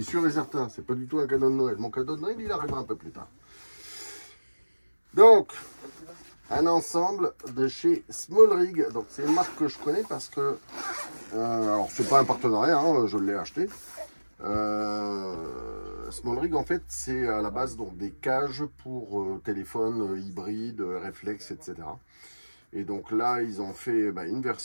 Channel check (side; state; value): both; inverted; correlation -1.00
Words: et certain, c'est pas du tout un cadeau de Noël. Mon cadeau de Noël, il arrivera un peu plus tard. Donc, un ensemble de chez Small Rig. Donc, c'est une marque que je connais parce que... alors, c'est pas un partenariat, hein, je l'ai acheté. Small Rig, en fait, c'est à la base donc, des cages pour téléphone hybride, réflexe, etc. Et donc là, ils ont fait une